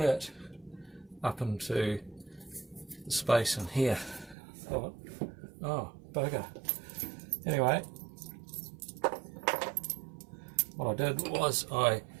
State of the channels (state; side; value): drops out; left; at 4.4 s